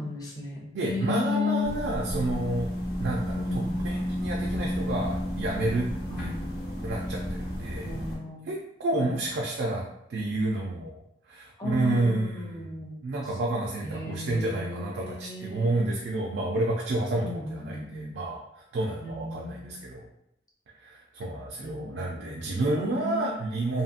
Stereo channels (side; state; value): both; normal; correlation 0.65